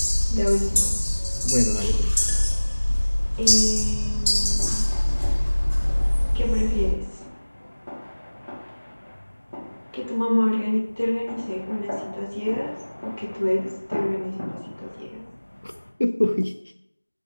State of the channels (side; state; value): both; inverted; correlation -1.00